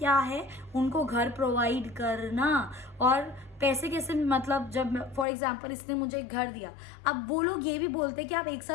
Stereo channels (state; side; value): drops out; right; at 5.2 s